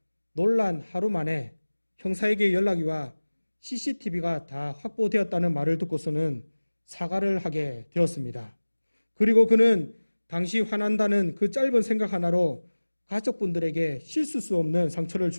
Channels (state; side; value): inverted; both; correlation -1.00